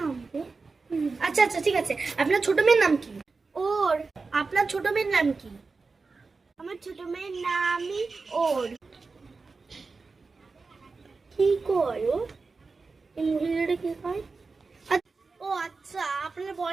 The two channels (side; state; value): left; quieter; 4.2 dB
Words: রে? আচ্ছা আচ্ছা ঠিক আছে। আপনার ছোট মেয়ের নাম কি? ওর। আপনার ছোট মেয়ের নাম কি? আমার ছোট মেয়ের নামই ওর। কি করো? এই মহিলাটা কি হয়? ও আচ্ছা, আপনার